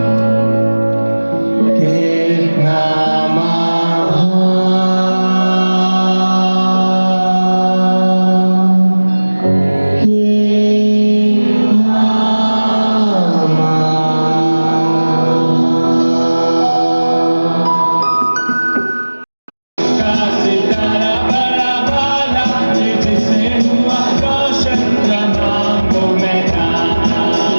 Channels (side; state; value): both; inverted; correlation -1.00